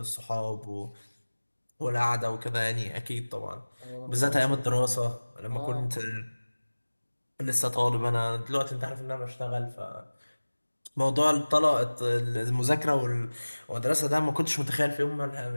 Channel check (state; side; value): inverted; both; correlation -1.00